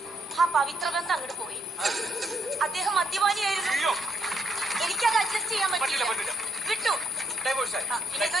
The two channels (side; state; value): both; normal; correlation 0.72